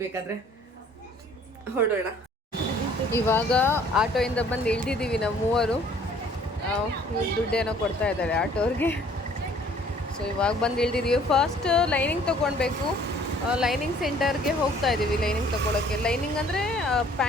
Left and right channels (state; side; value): normal; both; correlation 0.56